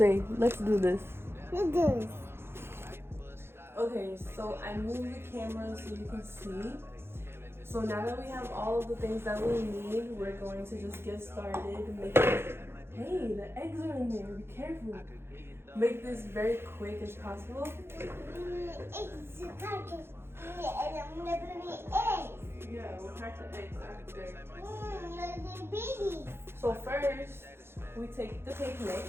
let's do this. Do this. Okay, so I moved the camera so you can see. So now that we have all of the things that we need, we're going to just get started making. Hey, the eggs are in there. Be careful. Make this very quick as possible. Eggs. And I'm gonna put eggs. Yeah, we'll crack the eggs after. They're babies. So first, we take the cake mix,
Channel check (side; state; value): left; late; 0.12 ms